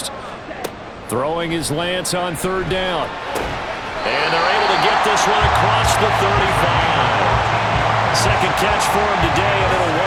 Throwing is Lance on 3rd down. And they're able to get this one across the 35. Second catch for him today, and it'll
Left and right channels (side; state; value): both; identical; correlation 1.00